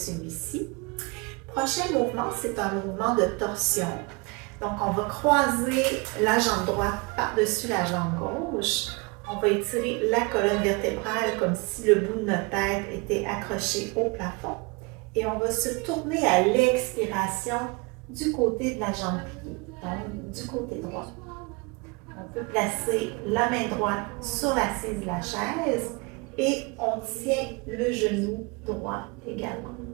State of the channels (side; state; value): left; quieter; 28.7 dB